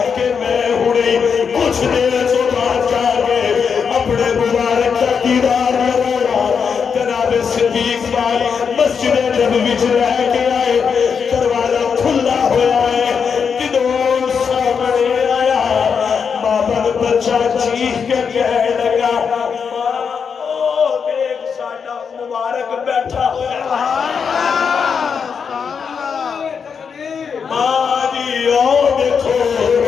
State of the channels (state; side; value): quieter; right; 6.4 dB